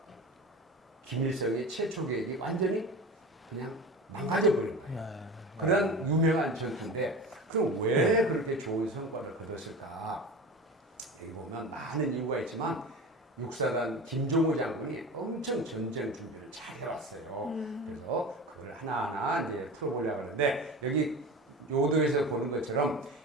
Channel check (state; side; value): normal; both; correlation 0.32